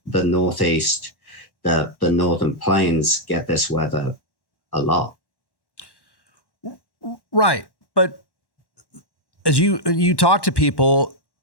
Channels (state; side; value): late; right; 1.1 ms